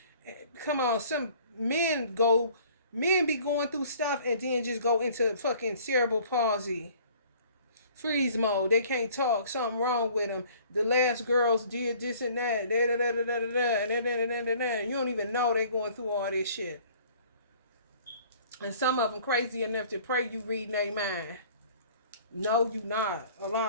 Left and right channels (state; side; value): inverted; both; correlation -0.53